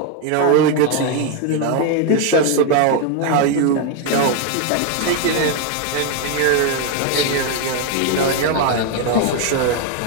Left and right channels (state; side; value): different; both; correlation 0.01